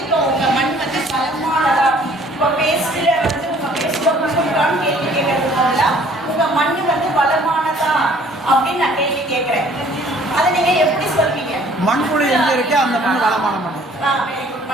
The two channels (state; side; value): normal; both; correlation 0.56